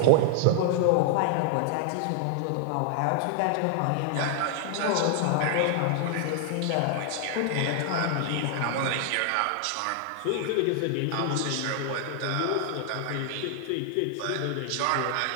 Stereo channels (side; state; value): both; different; correlation 0.00